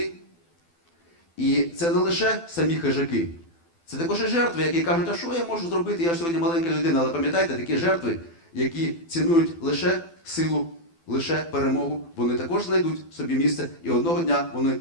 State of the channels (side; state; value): right; late; 12 ms